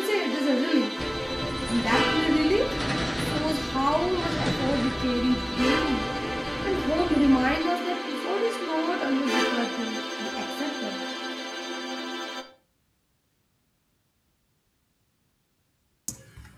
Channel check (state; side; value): identical; both; correlation 1.00